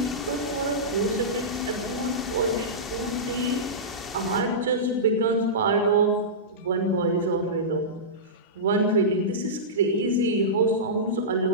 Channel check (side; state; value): both; normal; correlation -0.16